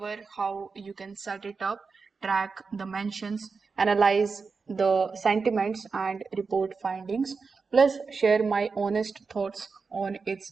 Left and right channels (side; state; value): left; quieter; 4.8 dB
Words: how you can set it up, track the mentions, analyze the sentiments and report findings, plus share my honest thoughts on its